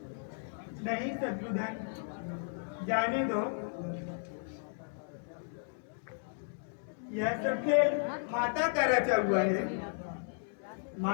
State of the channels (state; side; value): silent; right; digital silence